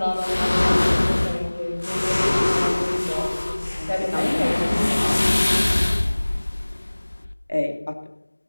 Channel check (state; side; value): inverted; both; correlation -1.00